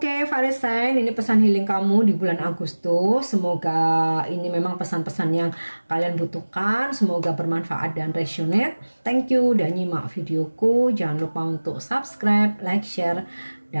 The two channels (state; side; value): inverted; both; correlation -1.00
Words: fire sign, ini pesan healing kamu di bulan Agustus. Semoga ini memang pesan-pesan yang kalian butuhkan. Semoga bermanfaat dan resonate. Thank you udah nyimak videoku. Jangan lupa untuk subscribe, like, share,